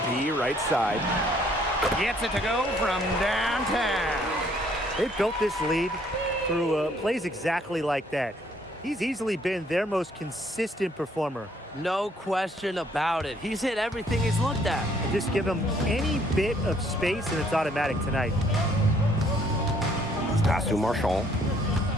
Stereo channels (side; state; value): both; normal; correlation 0.64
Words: right side. Gets it to go from downtown. They've built this lead through plays exactly like that. He's easily been their most consistent performer. No question about it. He's hit everything he's looked at. And just give him any bit of space and it's automatic tonight. Pass to Marchand.